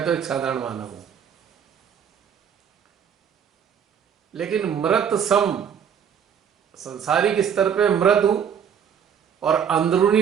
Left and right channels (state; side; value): quieter; left; 8.0 dB